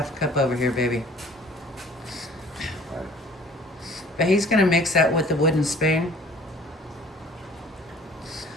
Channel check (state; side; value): normal; both; correlation 0.51